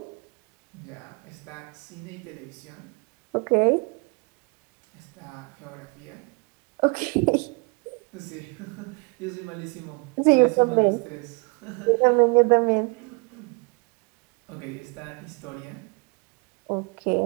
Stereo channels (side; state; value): left; quieter; 30.1 dB